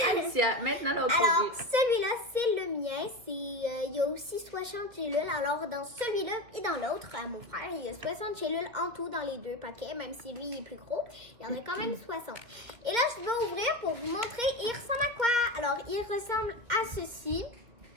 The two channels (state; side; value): late; left; 2.4 ms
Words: Alicia, maintenant l'autre Alors, produit. celui-là, c'est le mien. Il y a aussi 60 gélules. Alors, dans celui-là et dans l'autre, à mon frère, il y a 60 gélules en tout dans les 2 paquets. Même si lui, il est plus gros, il y en a quand même 60. Et là, je vais ouvrir pour vous montrer. Il ressemble à quoi? Alors, il ressemble à ceci.